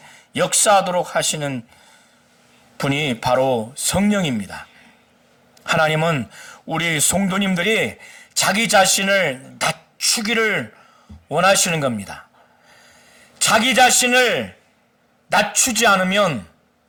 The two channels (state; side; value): identical; both; correlation 1.00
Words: 역사하도록 하시는 분이 바로 성령입니다. 하나님은 우리 성도님들이 자기 자신을 낮추기를 원하시는 겁니다. 자기 자신을 낮추지 않으면